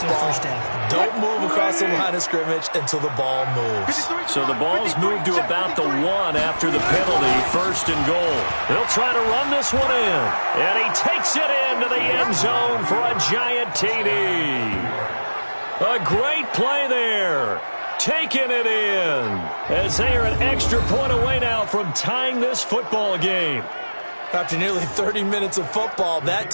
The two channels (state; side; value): inverted; both; correlation -1.00